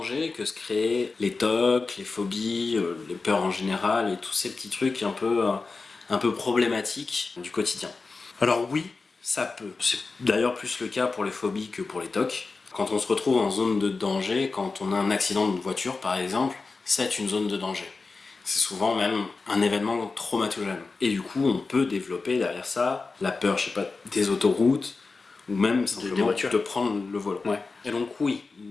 que se créaient les TOC, les phobies, les peurs en général et tous ces petits trucs un peu problématiques du quotidien. Alors oui, ça peut. C'est d'ailleurs plus le cas pour les phobies que pour les TOC. Quand on se retrouve en zone de danger, quand on a un accident de voiture par exemple, c'est une zone de danger. C'est souvent même un événement traumatogène. Et du coup, on peut développer derrière ça la peur, je sais pas, des autoroutes, ou même simplement de prendre le volant. Ouais. Et donc oui,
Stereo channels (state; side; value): quieter; right; 4.1 dB